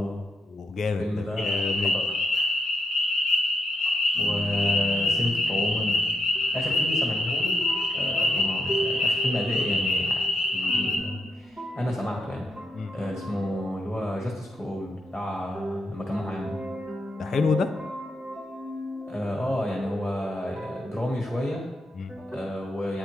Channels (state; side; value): normal; both; correlation 0.81